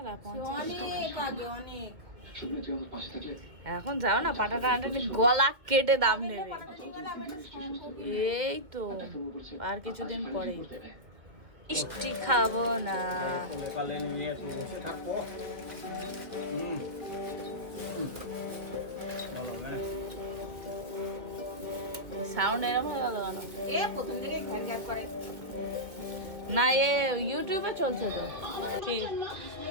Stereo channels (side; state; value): left; late; 2.1 ms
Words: এখন যাও না, পাটা টানাটানি গলা কেটে দাম নেবে। এই তো আর কিছুদিন পরে মিষ্টি খাবো না। সাউন্ড এরকম হয়ে গেল কেন? প্রথম থেকে ঘ্যার ঘ্যার করে না, এ ইউটিউবে চলছে তো। কি